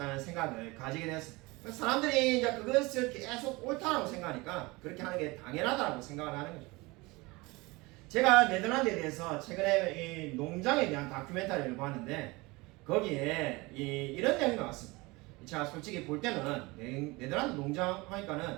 생각을 가지게 되었습니다. 사람들이 이제 그것을 계속 옳다라고 생각하니까 그렇게 하는 게 당연하다고 생각을 하는 거죠. 제가 네덜란드에 대해서 최근에 이 농장에 대한 다큐멘터리를 봤는데 거기에 이런 내용이 나왔습니다. 제가 솔직히 볼 때는 네덜란드 농장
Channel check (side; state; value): left; quieter; 23.6 dB